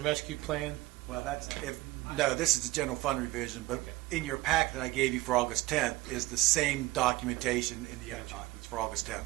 Rescue Plan? Well, no, this is the general fund revision, but Okay. in your packet that I gave you for August 10th is the same documentation in the other documents for August 10th.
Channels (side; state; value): left; quieter; 19.0 dB